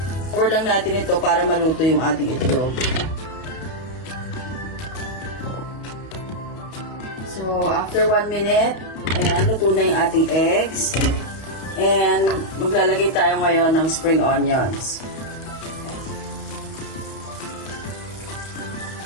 Cover lang natin ito para maluto yung ating itlog. So, after 1 minute, ayan, luto na yung ating eggs. And maglalagay tayo ngayon ng spring onions.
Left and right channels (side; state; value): right; late; 32 ms